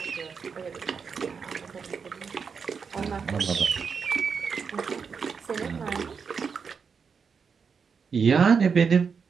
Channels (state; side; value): quieter; left; 5.9 dB